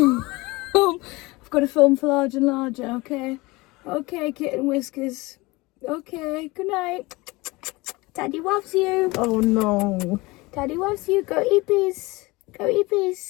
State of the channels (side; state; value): right; quieter; 22.8 dB